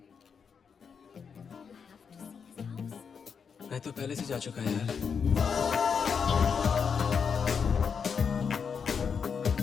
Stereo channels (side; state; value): right; quieter; 6.4 dB